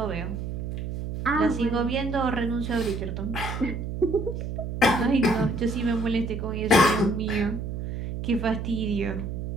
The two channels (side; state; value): right; noise; hum, 5 dB below the sound